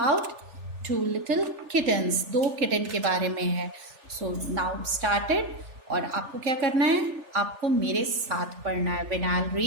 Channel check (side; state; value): left; late; 3.4 ms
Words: two little kittens, दो kitten के बारे में है. So now started. और आपको क्या करना है, आपको मेरे साथ पढ़ना है. When I'll